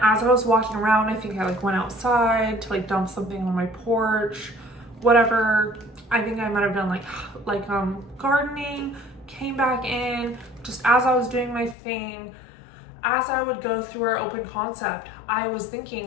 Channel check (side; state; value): right; drops out; at 11.8 s